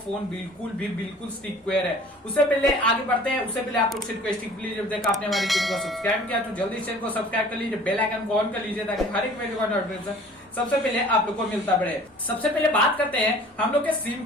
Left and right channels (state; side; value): normal; both; correlation 0.48